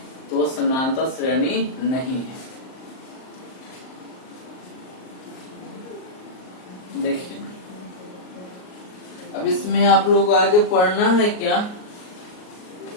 तो वो समानांतर श्रेणी नहीं है। देखिए अब इसमें आप लोग को आगे पढ़ना है क्या?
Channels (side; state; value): right; late; 38 ms